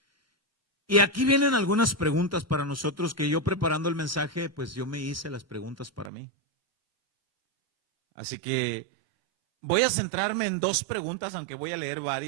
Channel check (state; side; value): drops out; left; at 6.1 s